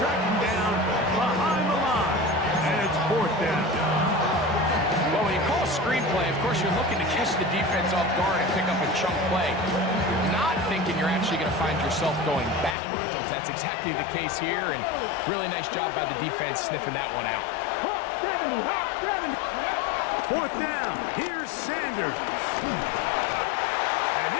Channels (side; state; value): right; drops out; at 12.8 s